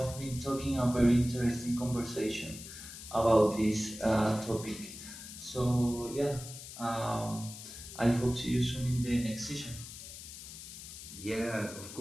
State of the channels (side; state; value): left; noise; hiss, 12 dB below the sound